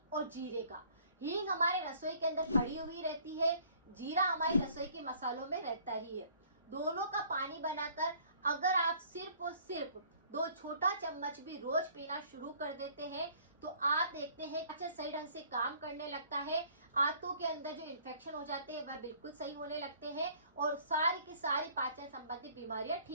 और जीरे का। हींग हमारे रसोई के अंदर पड़ी हुई रहती है, जीरा हमारी रसोई के मसालों में रहता ही है। दोनों का पानी बनाकर अगर आप सिर्फ और सिर्फ 2 छोटा चम्मच भी रोज पीना शुरू कर देते हैं तो आप देखते हैं पाचन सही ढंग से काम करने लगता है। आंतों के अंदर जो इन्फेक्शन हो जाते हैं वह बिल्कुल सही होने लगते हैं और सारी की सारी पाचन संबंधी बीमारियां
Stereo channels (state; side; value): inverted; both; correlation -0.56